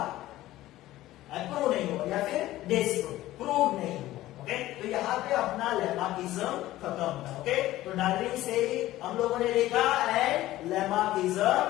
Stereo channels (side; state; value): right; quieter; 15.7 dB